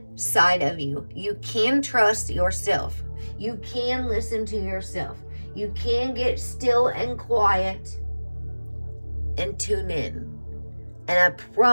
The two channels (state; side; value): inverted; both; correlation -1.00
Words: of you. You can trust yourself. You can listen to yourself. You can get still and quiet and tune in. And I